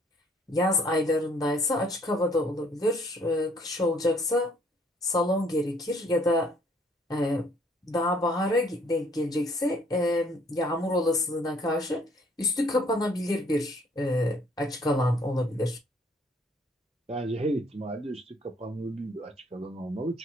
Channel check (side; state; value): both; normal; correlation 0.62